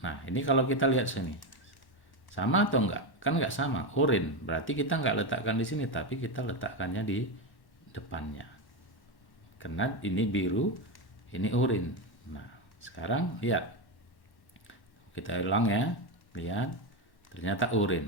Nah, ini kalau kita lihat sini, sama atau enggak? Kan nggak sama, oranye. Berarti kita nggak letakkan di sini, tapi kita letakkannya di depannya. Karena ini biru, ini oranye. Nah, sekarang lihat, kita ulang ya, lihat, ternyata oranye.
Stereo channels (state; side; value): late; right; 1.1 ms